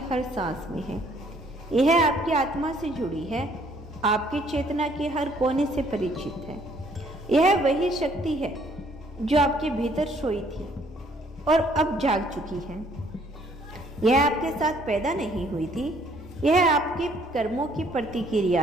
हर सांस में है। यह आपकी आत्मा से जुड़ी है, आपकी चेतना के हर कोने से परिचित है। यह वही शक्ति है जो आपके भीतर सोई थी और अब जाग चुकी है। यह आपके साथ पैदा नहीं हुई थी, यह आपके कर्मों की प्रतिक्रिया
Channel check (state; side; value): normal; both; correlation 0.63